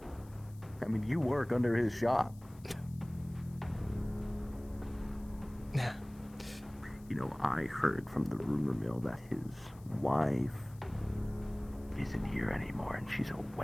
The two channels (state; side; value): noise; left; hiss, 26 dB below the sound